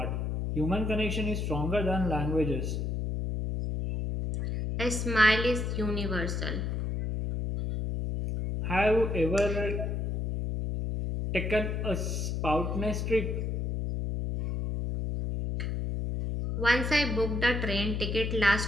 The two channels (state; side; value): noise; left; hum, 1 dB below the sound